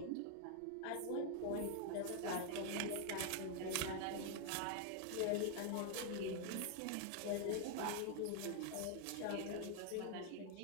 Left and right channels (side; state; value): both; different; correlation 0.00